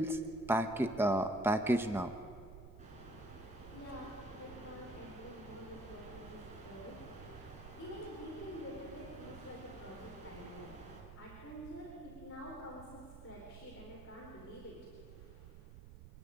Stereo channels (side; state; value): right; noise; rumble, 13 dB below the sound